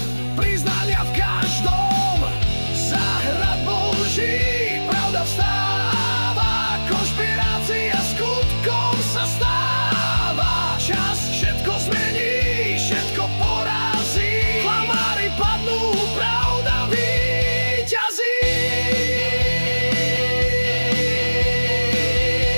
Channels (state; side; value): inverted; both; correlation -1.00